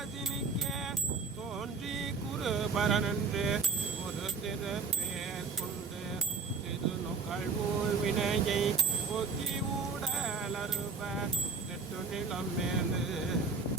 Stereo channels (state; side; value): quieter; left; 4.7 dB